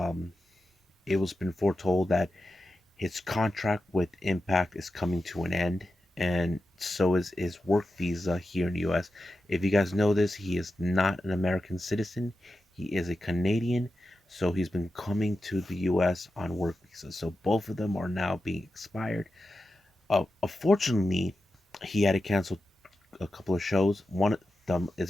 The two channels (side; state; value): both; normal; correlation 0.90